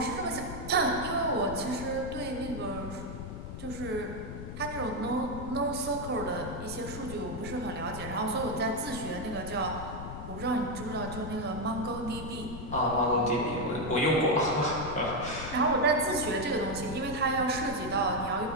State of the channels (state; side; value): noise; left; rumble, 8 dB below the sound